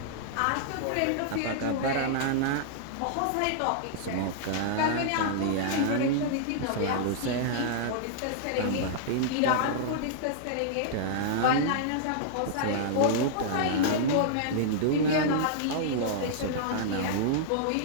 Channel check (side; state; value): both; different; correlation -0.02